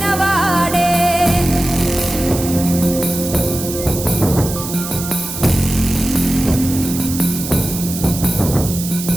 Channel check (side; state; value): right; noise; hiss, 8 dB below the sound